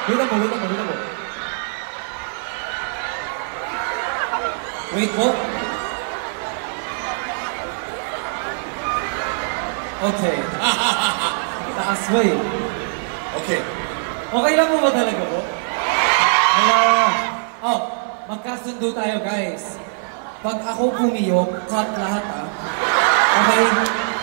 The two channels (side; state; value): left; silent; 56 dB below the other